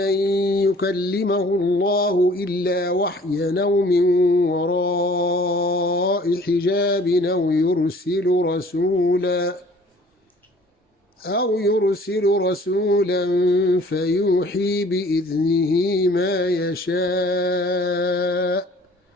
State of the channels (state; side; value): normal; both; correlation 0.52